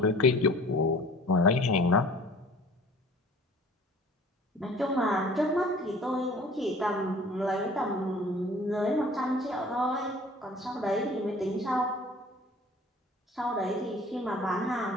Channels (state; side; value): normal; both; correlation 0.48